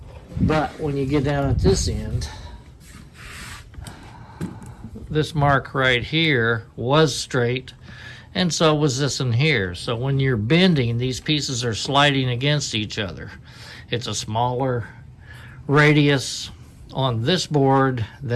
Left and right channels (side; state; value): both; identical; correlation 1.00